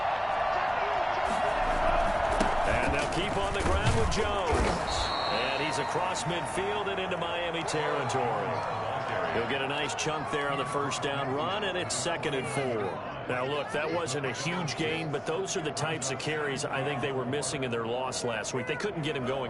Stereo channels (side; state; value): both; identical; correlation 1.00